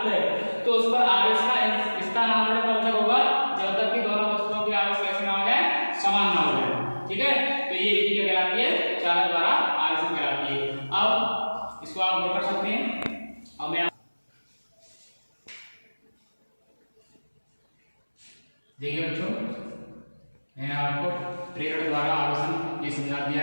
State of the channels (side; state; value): both; inverted; correlation -1.00